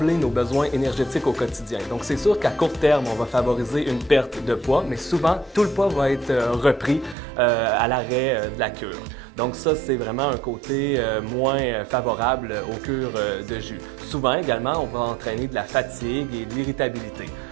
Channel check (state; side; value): drops out; left; at 7.2 s